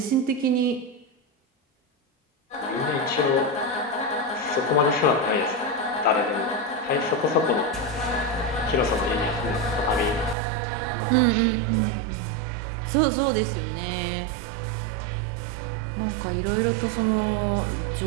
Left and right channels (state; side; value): drops out; left; at 10.4 s